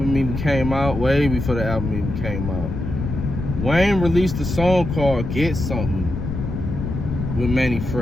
even came out, way before the album even came out, Wayne released a song called Get Something with Manny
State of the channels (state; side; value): noise; left; rumble, 5 dB below the sound